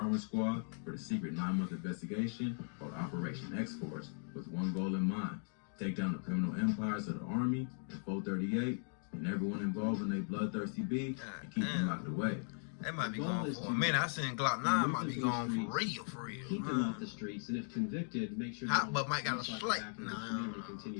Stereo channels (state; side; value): silent; right; 52 dB below the other